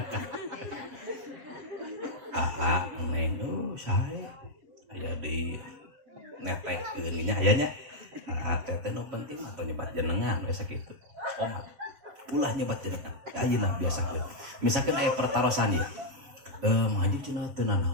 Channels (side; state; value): left; late; 7.6 ms